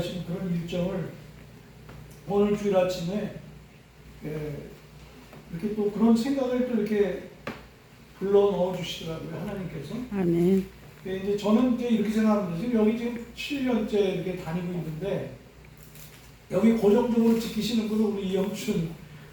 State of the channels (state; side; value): identical; both; correlation 1.00